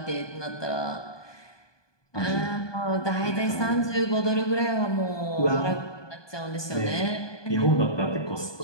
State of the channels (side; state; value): right; late; 1.2 ms